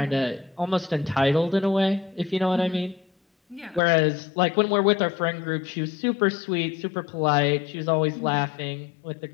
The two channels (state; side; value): drops out; right; at 3.8 s